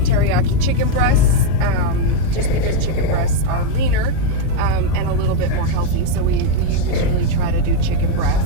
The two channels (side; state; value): both; different; correlation 0.01